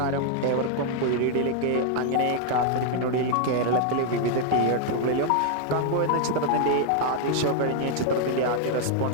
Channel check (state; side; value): different; both; correlation 0.00